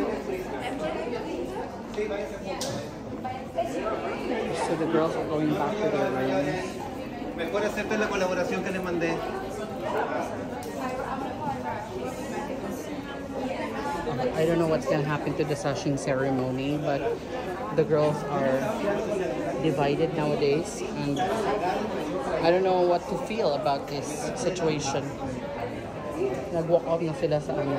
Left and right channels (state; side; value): identical; both; correlation 1.00